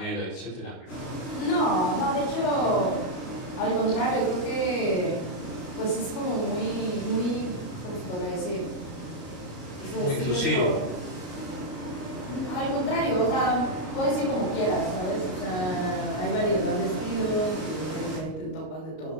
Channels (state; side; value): late; right; 38 ms